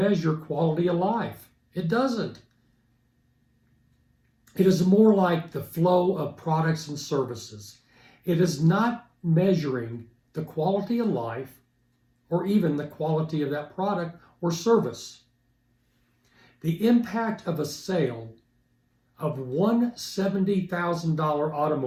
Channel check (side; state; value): both; identical; correlation 1.00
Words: quality of life. It doesn't. It is more like the flow of products and services. It is not measuring the quality of life or even the quality of that product or service. The impact of a sale of one $70,000